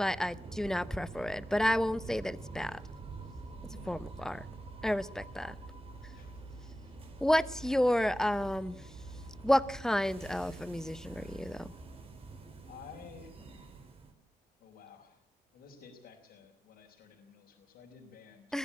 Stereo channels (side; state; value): both; normal; correlation 0.96